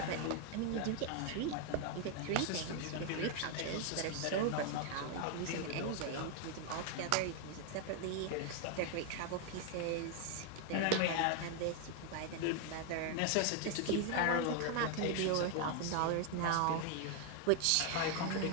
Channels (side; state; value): both; different; correlation 0.01